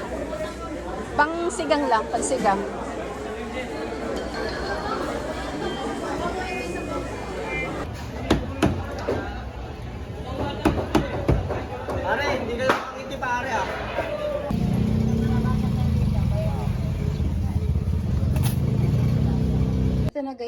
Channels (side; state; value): both; identical; correlation 1.00